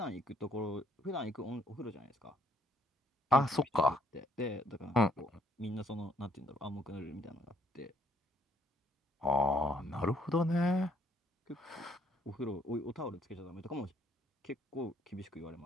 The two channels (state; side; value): normal; both; correlation 0.66